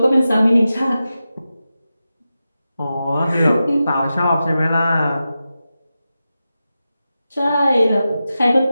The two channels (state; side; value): inverted; both; correlation -0.92